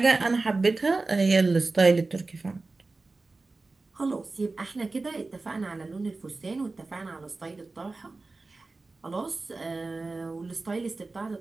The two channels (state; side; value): quieter; left; 3.5 dB